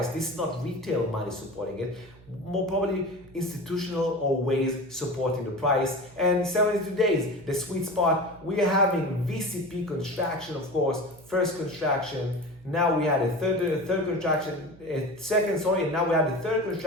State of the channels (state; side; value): noise; right; hum, 23 dB below the sound